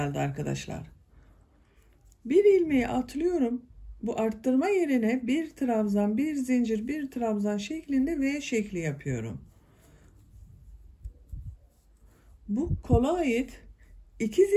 arkadaşlar. Bir ilmeği atlıyorum. Bu arttırma yerine bir trabzan, bir zincir, bir trabzan şeklinde V şekli yapıyorum. Bu kola ait 2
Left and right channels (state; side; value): identical; both; correlation 1.00